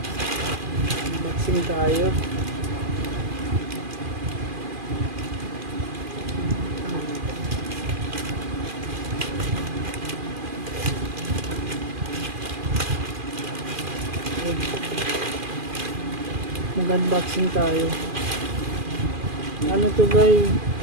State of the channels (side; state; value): left; late; 2.4 ms